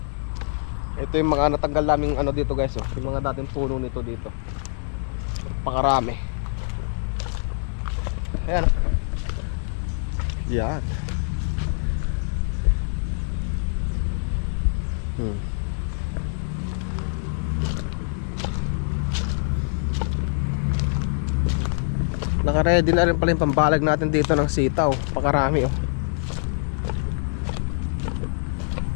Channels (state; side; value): silent; right; 62 dB below the other